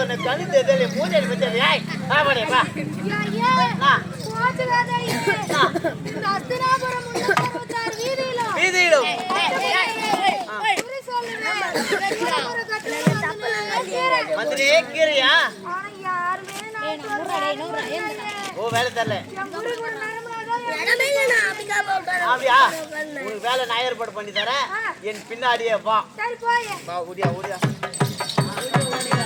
ஒன்று கண்ணு தெரியல மூஞ்சி பத்தி ஏய் பாடே பா வீதியிலும் மந்திரி கீரையா ஓ வேலை தரல அப்படியா உனக்கு வேலை நான் ஏற்பாடு பண்ணி தரேன் என் பின்னாடியே வா ஓடியா ஓடியா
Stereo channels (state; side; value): identical; both; correlation 1.00